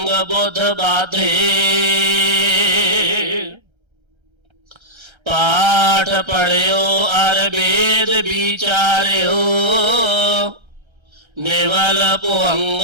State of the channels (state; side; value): late; left; 1.3 ms